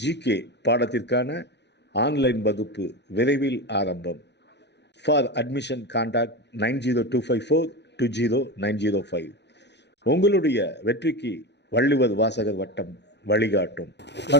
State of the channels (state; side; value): late; right; 0.50 ms